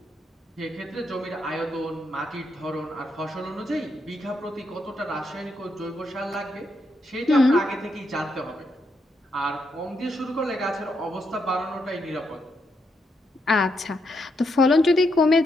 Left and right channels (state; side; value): normal; both; correlation 0.80